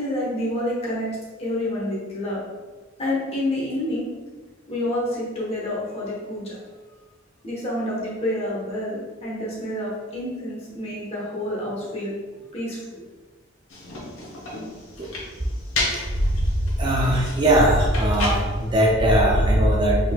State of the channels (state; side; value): normal; both; correlation 0.49